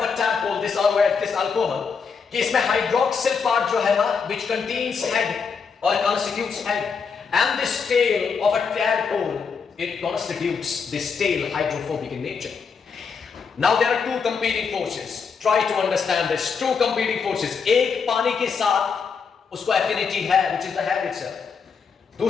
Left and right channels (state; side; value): quieter; right; 5.8 dB